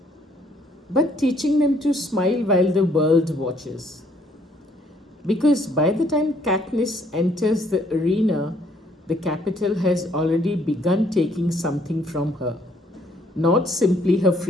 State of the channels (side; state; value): both; normal; correlation 0.65